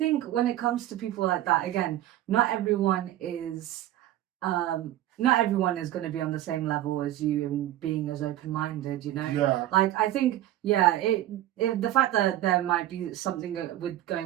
when it comes to people like that, again, not everyone is going to be on the same level as you and being as open-minded, you know. Yeah. Like I think, yeah, it the fact that there might be something with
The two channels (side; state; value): left; quieter; 13.8 dB